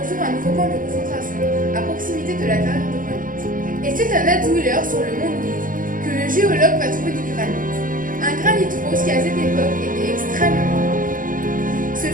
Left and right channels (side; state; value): left; late; 0.40 ms